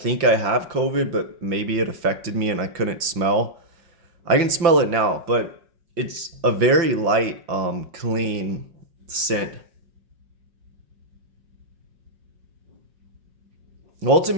I have COVID, but maybe it affected me and I couldn't smell. I can smell it now, but it's a very light, clean scent.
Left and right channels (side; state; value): left; late; 5.5 ms